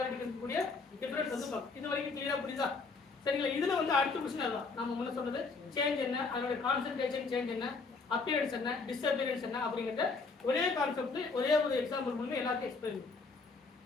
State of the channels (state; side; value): quieter; right; 4.2 dB